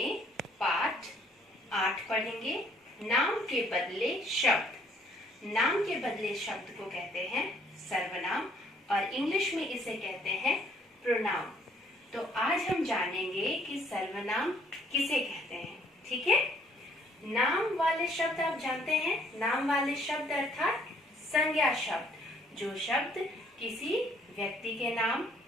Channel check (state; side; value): normal; both; correlation 0.63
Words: पाठ 8 पढ़ेंगे। नाम के बदले शब्द। नाम के बदले शब्द को कहते हैं सर्वनाम और इंग्लिश में इसे कहते हैं प्रोनाउन। तो आज हम जानेंगे कि सर्वनाम किसे कहते हैं। ठीक है, नाम वाले शब्द आप जानते हैं। नाम वाले शब्द अर्थात संज्ञा शब्द, जो शब्द किसी व्यक्ति के नाम,